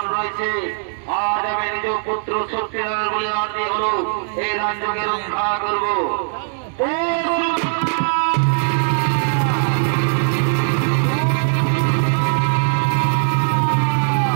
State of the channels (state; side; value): silent; left; digital silence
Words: রয়েছে। আজ আমি নিজ পুত্র সত্যিকারের বলে আরতি হলো এই রাজ্যকে রক্ষা করবো।